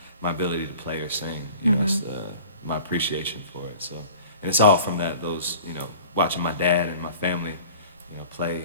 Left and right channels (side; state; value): both; inverted; correlation -0.44